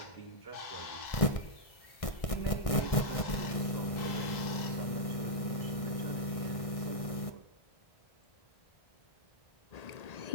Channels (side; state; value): right; late; 1.6 ms